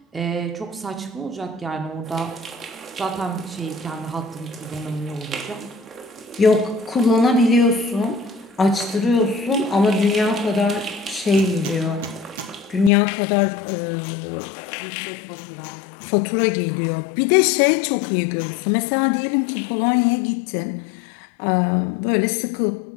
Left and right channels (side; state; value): right; drops out; at 12.9 s